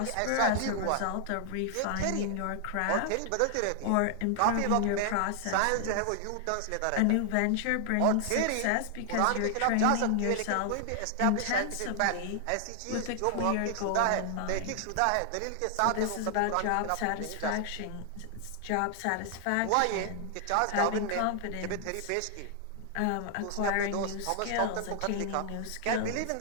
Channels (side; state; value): both; different; correlation 0.00